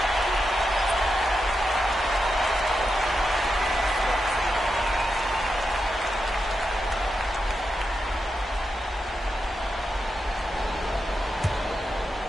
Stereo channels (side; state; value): both; normal; correlation 0.87